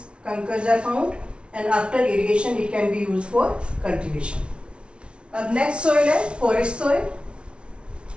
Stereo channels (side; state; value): left; late; 0.058 ms